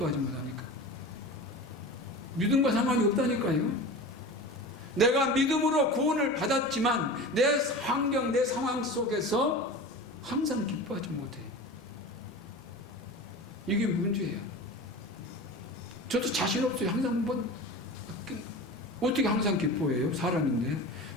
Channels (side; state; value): both; normal; correlation 0.32